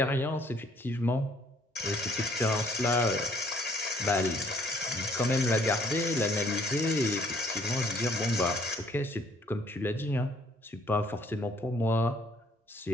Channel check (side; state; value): both; normal; correlation 0.62